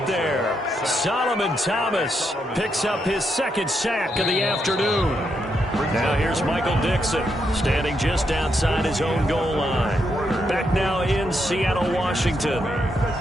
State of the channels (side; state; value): both; normal; correlation 0.80